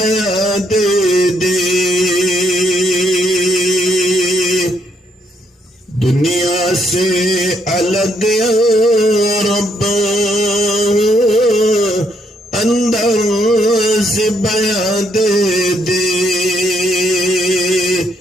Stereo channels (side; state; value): both; normal; correlation 0.73